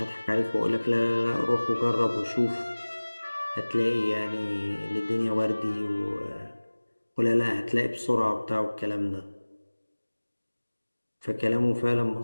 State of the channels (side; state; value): both; inverted; correlation -1.00